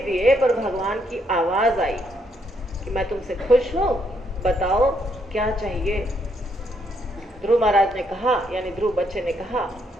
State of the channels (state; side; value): normal; both; correlation 0.74